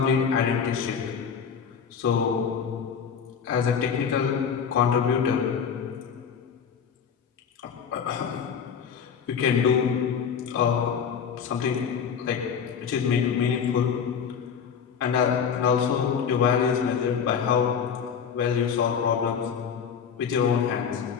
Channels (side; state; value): right; quieter; 7.0 dB